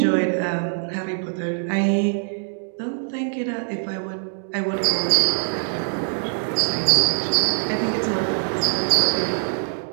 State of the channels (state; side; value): silent; left; digital silence